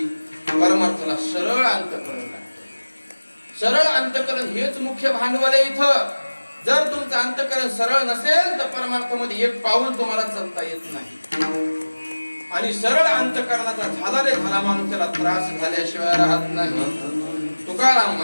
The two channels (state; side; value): inverted; both; correlation -1.00